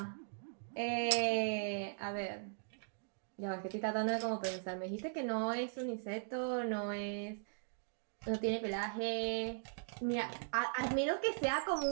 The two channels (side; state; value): left; silent; digital silence